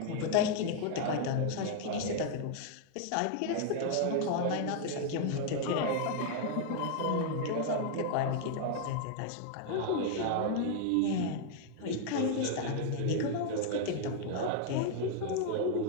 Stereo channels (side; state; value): both; different; correlation 0.00